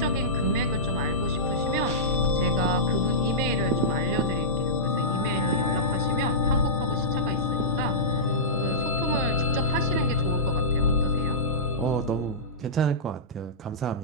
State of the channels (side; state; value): both; normal; correlation -0.17